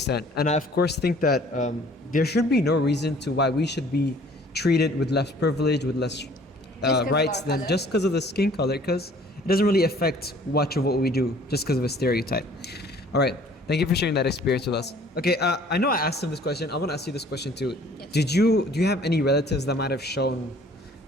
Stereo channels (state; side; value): normal; both; correlation 0.54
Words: And I, of course, think that there should be no reason to why we should be treated with less privilege, with less 'cause of rights our than color? just because of the skin color, because it doesn't really affect much of what we do just because of a stereotype. All right. Thank you for sharing that experience with us. Okay, I know I asked him this question. I want to ask you this question too. Yes. Do you have any relatives that might have shown